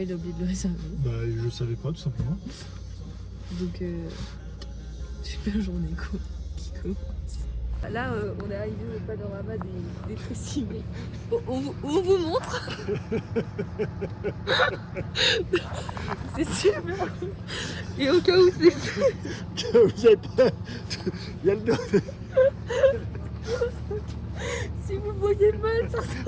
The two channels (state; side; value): identical; both; correlation 1.00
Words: il a oublié de le réserver. Bah, je savais pas, tout simplement. Donc, super journée qui commence. Là, on est arrivé au panorama des Tressimé. On vous montre. C'est super. Et au cas où c'est... Vous êtes pas... Il y a le dos. Si vous voyez mal, ça